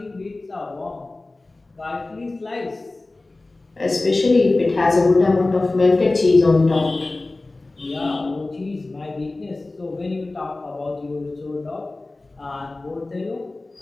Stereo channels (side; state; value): right; quieter; 3.1 dB